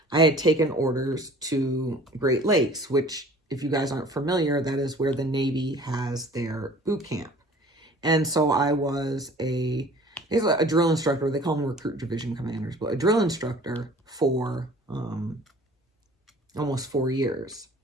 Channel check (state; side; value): normal; both; correlation 0.48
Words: I had taken orders to Great Lakes, which, if you guys aren't familiar, that is where the Navy has their boot camp. And so I was a drill instructor. They call them recruit division commanders, but a drill instructor for almost 4 years.